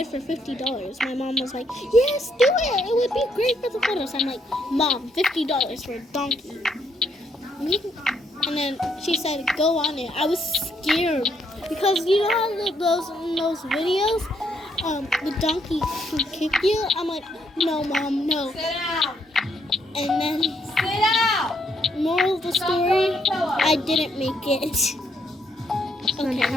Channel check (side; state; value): both; normal; correlation 0.73